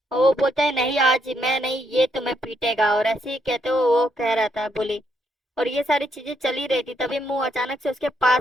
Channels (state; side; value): normal; both; correlation 0.76